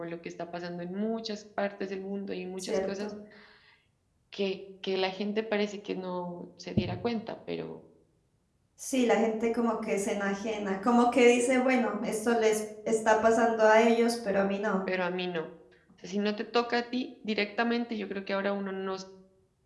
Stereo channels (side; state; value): both; identical; correlation 1.00